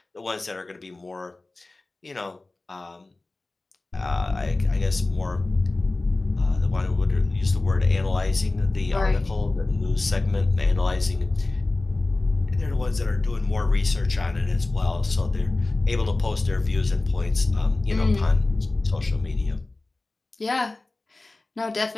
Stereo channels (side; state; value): right; quieter; 3.1 dB